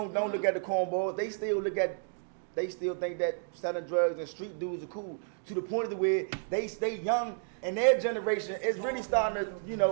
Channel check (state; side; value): silent; left; digital silence